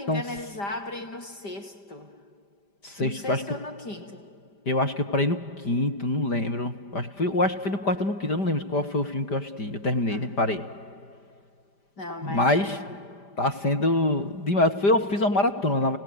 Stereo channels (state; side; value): late; right; 5.0 ms